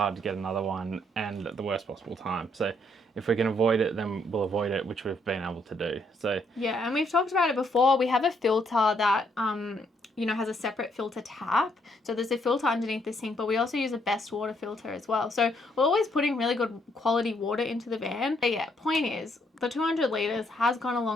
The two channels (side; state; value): both; normal; correlation 0.72